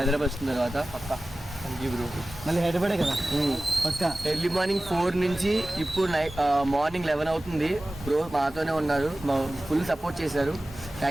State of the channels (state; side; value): normal; both; correlation 0.96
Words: వచ్చిన తర్వాత పక్కా. Thank you bro. మళ్ళీ హైదరాబాదే కదా పక్కా. ఎర్లీ మార్నింగ్ 4 నుంచి ఇప్పుడు మార్నింగ్ 11 అవుతుంది. బ్రో మాతోనే ఉన్నారు. ఫుల్ సపోర్ట్ చేశారు.